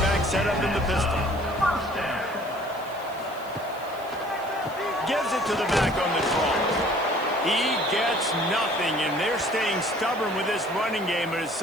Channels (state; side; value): noise; right; hiss, 22 dB below the sound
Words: set up in the pistol. Gives it to the back on the draw. He gets nothing, and they're staying stubborn with this running game, but at